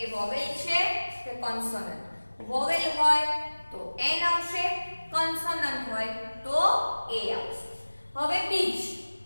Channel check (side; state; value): both; inverted; correlation -1.00